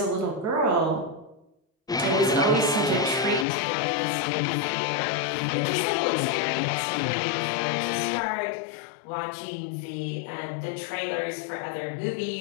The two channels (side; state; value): right; drops out; at 3.5 s